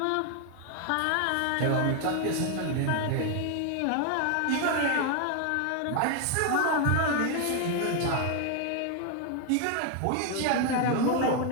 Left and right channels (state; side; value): different; both; correlation 0.01